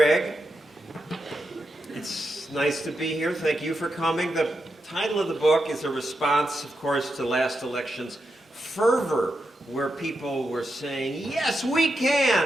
It's nice to be here. Thank you for coming. The title of the book is a response, of course, to last election's fervor, where people were saying, yes, we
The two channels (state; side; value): normal; both; correlation 0.86